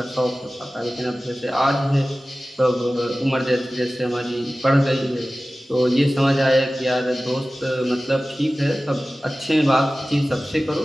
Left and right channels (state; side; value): normal; both; correlation 0.96